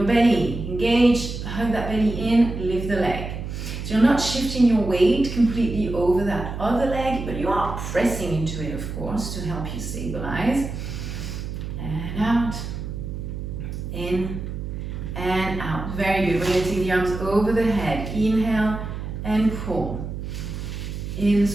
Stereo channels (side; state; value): right; noise; hum, 6 dB below the sound